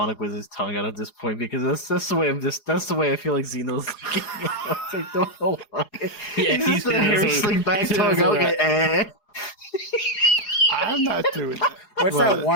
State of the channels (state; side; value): late; right; 4.8 ms